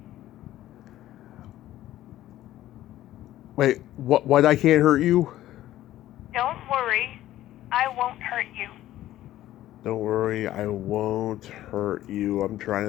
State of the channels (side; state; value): right; quieter; 14.0 dB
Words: Wait, what I can't hurt you? Don't worry, I won't hurt you. Don't worry, I won't hurt you. I'm